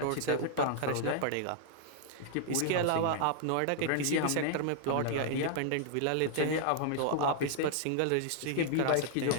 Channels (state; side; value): different; both; correlation -0.01